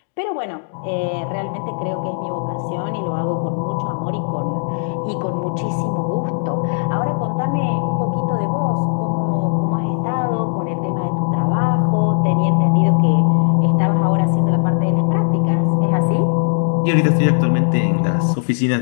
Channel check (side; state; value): right; silent; digital silence